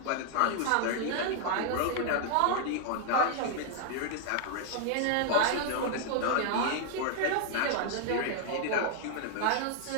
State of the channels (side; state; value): both; different; correlation 0.00